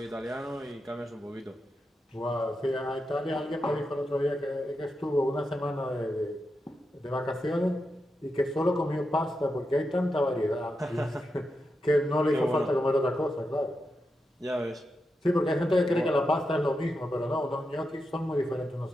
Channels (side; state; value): both; normal; correlation 0.87